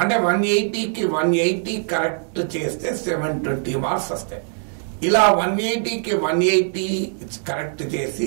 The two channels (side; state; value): left; silent; 64 dB below the other